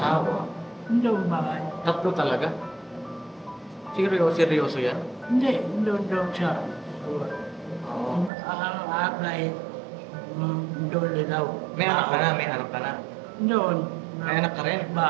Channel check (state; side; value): drops out; left; at 8.3 s